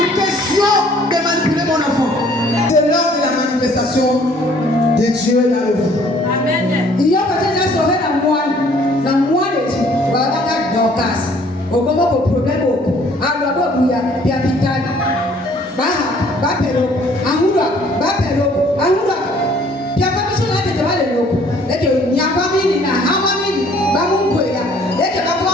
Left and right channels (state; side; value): normal; both; correlation 0.58